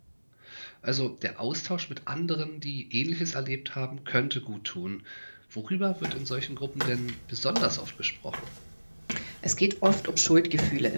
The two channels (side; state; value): both; inverted; correlation -1.00